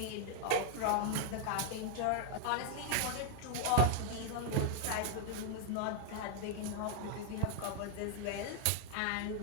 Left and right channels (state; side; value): different; both; correlation 0.00